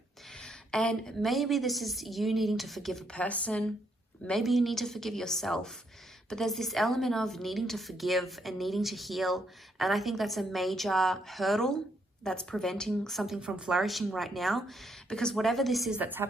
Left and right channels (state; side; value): normal; both; correlation 0.75